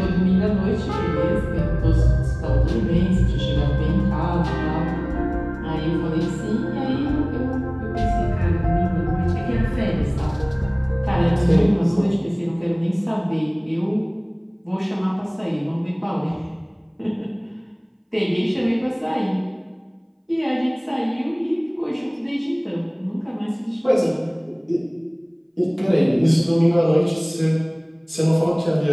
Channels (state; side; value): identical; both; correlation 1.00